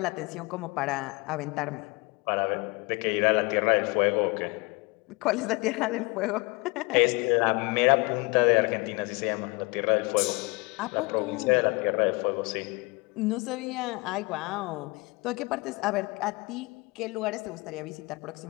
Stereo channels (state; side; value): quieter; right; 26.6 dB